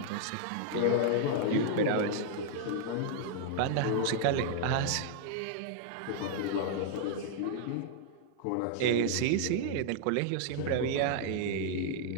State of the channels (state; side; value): different; both; correlation -0.01